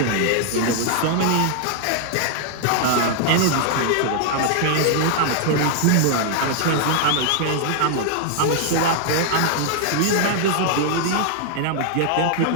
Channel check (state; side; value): different; both; correlation 0.00